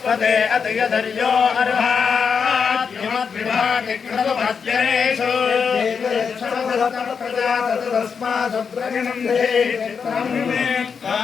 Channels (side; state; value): right; quieter; 6.1 dB